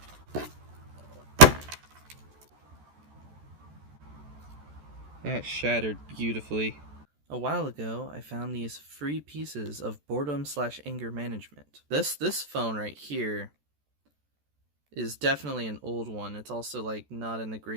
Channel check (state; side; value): late; left; 14 ms